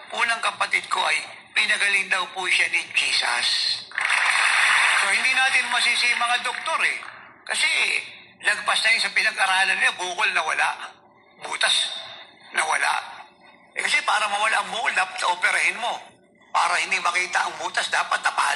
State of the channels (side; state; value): both; identical; correlation 1.00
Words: po ng kapatid ko ay, pinagaling daw po siya ni Jesus. So, hindi natin masisi mga doktor eh. Kasi, lagpas na yun sa pinag-aralan niya, bukol nawala. Butas nawala. Kasi para mawala ang bukol, dapat operahin mo. Para hindi makita ang butas, dapat